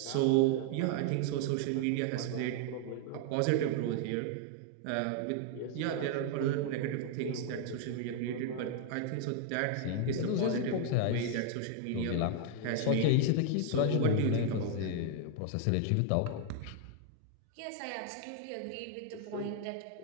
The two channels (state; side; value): different; both; correlation 0.00